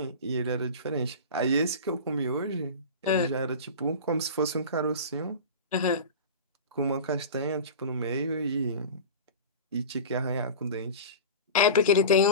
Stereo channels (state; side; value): inverted; both; correlation -0.31